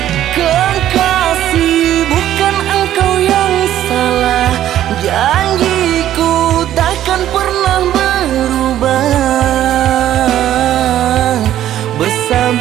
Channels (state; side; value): quieter; left; 12.1 dB